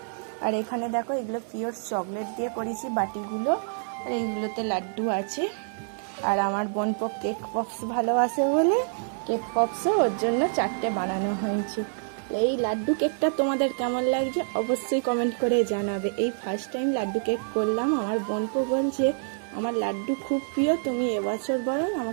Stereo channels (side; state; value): left; silent; digital silence